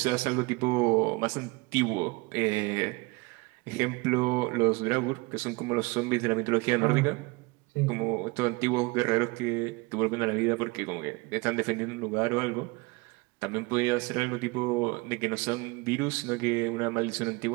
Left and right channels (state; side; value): quieter; left; 25.3 dB